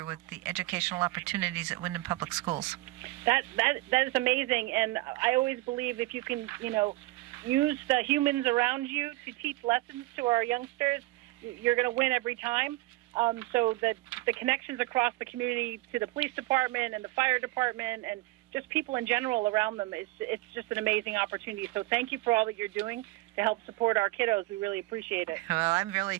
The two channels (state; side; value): quieter; left; 20.1 dB